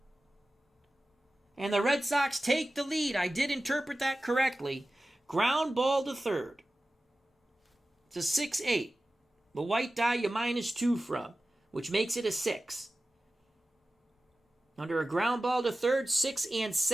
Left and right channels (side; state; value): both; normal; correlation 0.95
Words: And the Red Sox take the lead. I did interpret that correctly. Ground ball to third. It's a 6-8. The white die you -2 from, which makes it a 6. Under a ground ball to third, 6 and